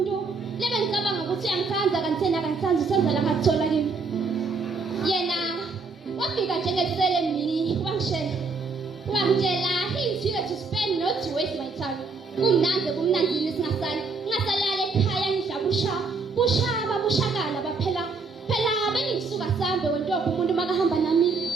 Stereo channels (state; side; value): quieter; left; 4.2 dB